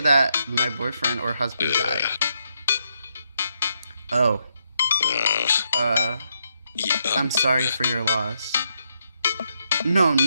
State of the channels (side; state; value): both; inverted; correlation -0.79